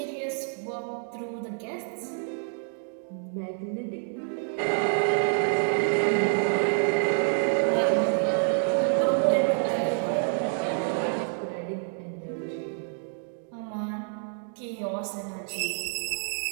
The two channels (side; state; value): left; silent; 59 dB below the other